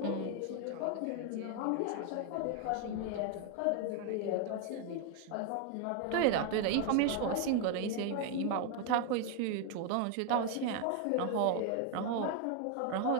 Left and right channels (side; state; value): both; different; correlation 0.01